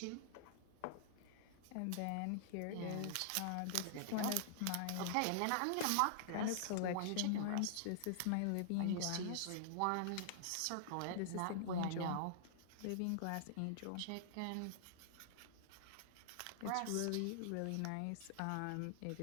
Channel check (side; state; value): both; different; correlation -0.01